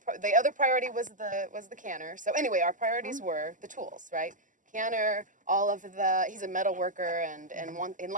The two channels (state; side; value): late; left; 0.37 ms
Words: the other priority was the canner. So anyway, our priorities were the tools, right? Canner, all of the. He's a metal worker and